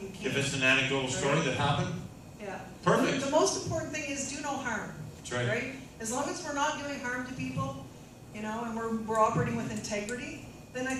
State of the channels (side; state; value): both; identical; correlation 1.00